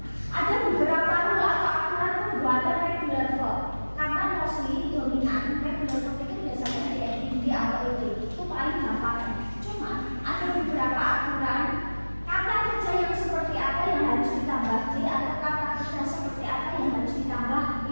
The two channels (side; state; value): both; inverted; correlation -1.00